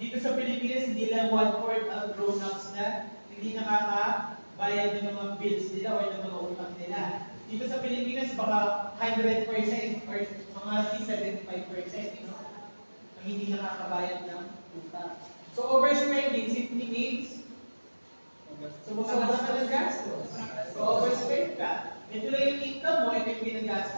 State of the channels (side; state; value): both; inverted; correlation -1.00